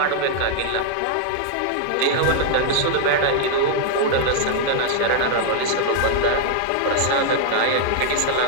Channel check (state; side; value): different; both; correlation 0.00